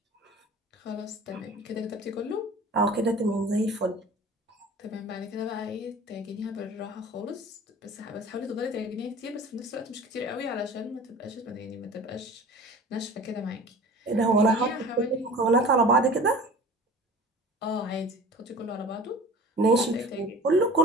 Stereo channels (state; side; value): normal; both; correlation 0.41